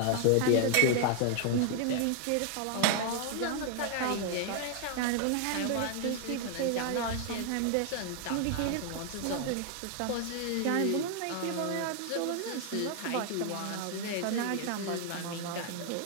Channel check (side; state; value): both; different; correlation 0.00